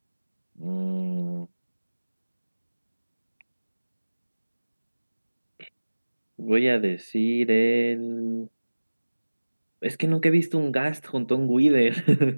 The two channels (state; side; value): inverted; both; correlation -1.00